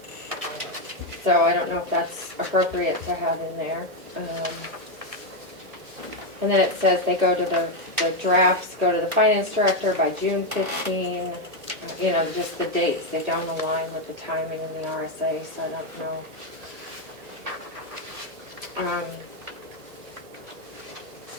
So I don't know if that's appropriate to have in there. And then it says they go to the drafts, go to the finance director by June 15. You know, just the dates, they don't align with the timing in the RSA, so I don't know.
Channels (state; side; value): late; left; 1.5 ms